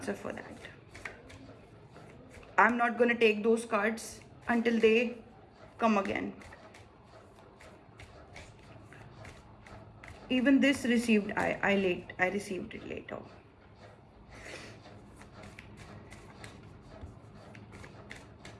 for that. I'm not going to take those cards until they come again. Even this received, I received it later.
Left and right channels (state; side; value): identical; both; correlation 1.00